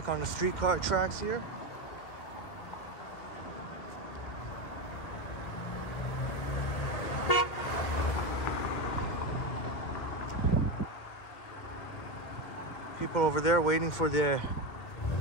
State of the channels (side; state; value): right; late; 2.6 ms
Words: on the streetcar tracks here. People over there waiting for the